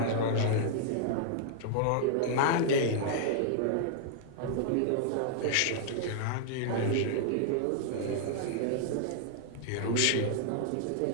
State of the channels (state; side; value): different; both; correlation -0.01